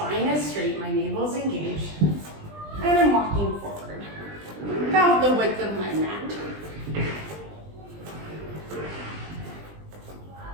is straight, my navel is engaged, and I'm walking forward about the width of my mat.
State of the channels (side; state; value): left; late; 20 ms